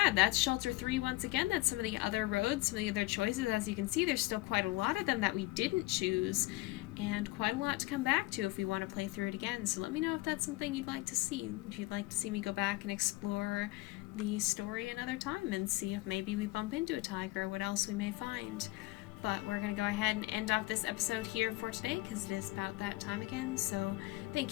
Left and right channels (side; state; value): right; quieter; 20.3 dB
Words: that's Shelter 3 once again. That's some of the other roads, some of the other choices. As you can see, there's still quite a lot of them that we didn't choose, and quite a lot to come back to if we want to play through it again. So let me know if that's something you'd like to see. If you'd like to see me go back and explore the story another time and see if maybe we bump into a tiger or what else we may find. But we're going to go ahead and end off this episode here for today because it is about that time again. So